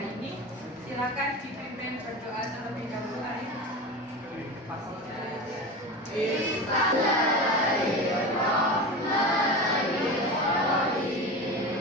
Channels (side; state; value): both; normal; correlation 0.27